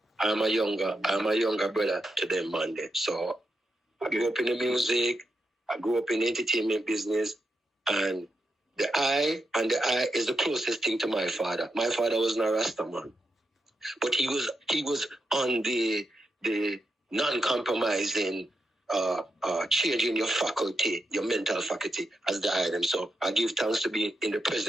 I'm a younger brother to them, man. So I grew up in the music, I grew up in the entertainment business, and the eye is the closest thing to my father. My father was not a Rasta man, but he was on the non-compromising, changing your faculty, your mental faculty as the item. So I give thanks to be in the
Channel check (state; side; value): normal; both; correlation 0.85